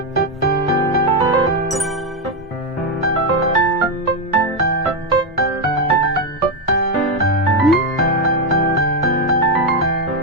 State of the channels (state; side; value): normal; both; correlation 0.06